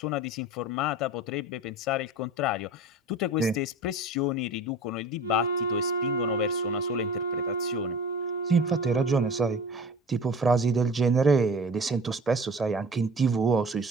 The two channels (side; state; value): both; normal; correlation 0.39